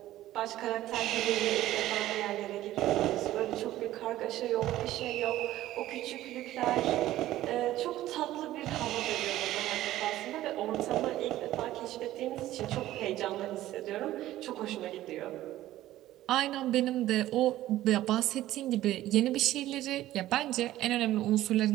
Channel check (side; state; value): left; quieter; 14.6 dB